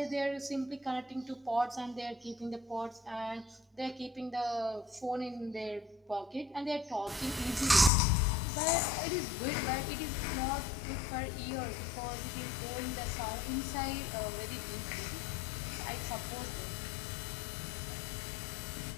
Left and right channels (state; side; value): drops out; right; at 7.9 s